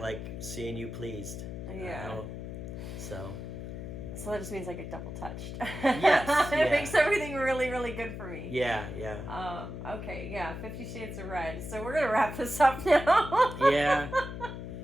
seeing you pleased. Yeah. So that just means I get double touched. Yes. It makes everything really, really good for me. Yeah. Okay, yeah, 50 Shades of Red. So we're going to wrap this up now. Yeah.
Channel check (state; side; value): noise; left; hum, 8 dB below the sound